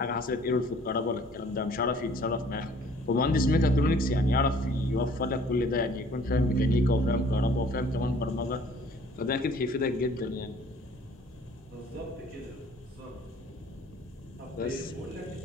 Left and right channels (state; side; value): normal; both; correlation 0.54